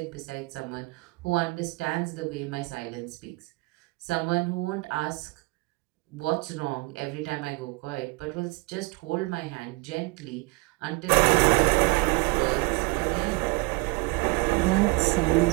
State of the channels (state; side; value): quieter; left; 25.5 dB